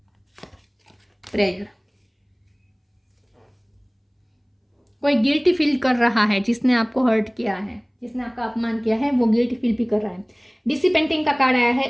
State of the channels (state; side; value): identical; both; correlation 1.00